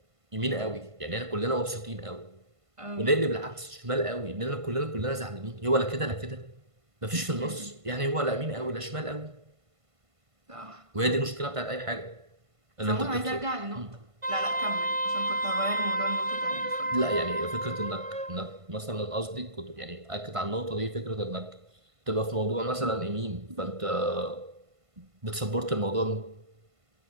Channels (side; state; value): left; late; 1.5 ms